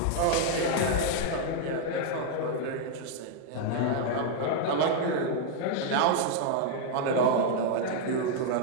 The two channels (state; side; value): different; both; correlation 0.00